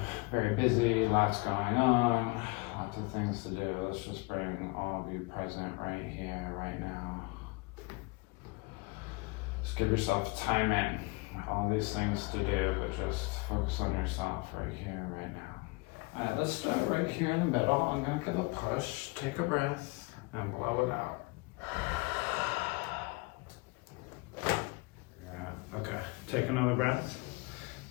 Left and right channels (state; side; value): quieter; right; 26.2 dB